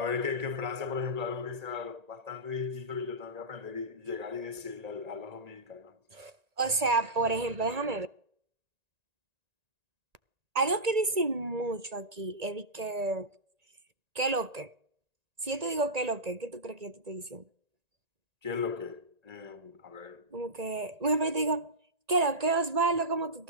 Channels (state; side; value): late; left; 1.9 ms